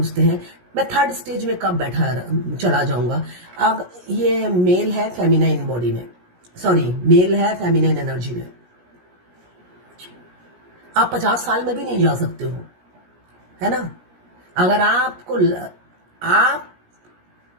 हैं मैं थर्ड स्टेज में कब चला जाऊंगा। अब ये मेल है फेमिनाइन बॉडी में, सॉरी मेल है फेमिनाइन एनर्जी में। आप 50 साल में भी नहीं जा सकते हो, है ना। अगर आप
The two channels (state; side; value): late; left; 17 ms